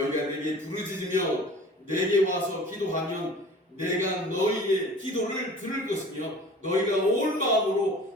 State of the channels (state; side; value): normal; both; correlation 0.43